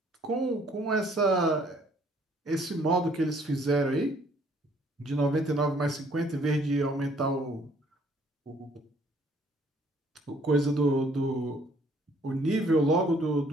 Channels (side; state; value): both; normal; correlation 0.62